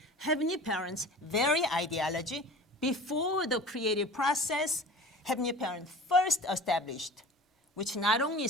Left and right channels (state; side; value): normal; both; correlation 0.39